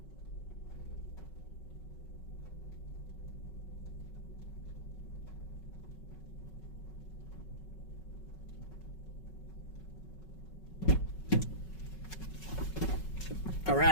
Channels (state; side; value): late; right; 5.4 ms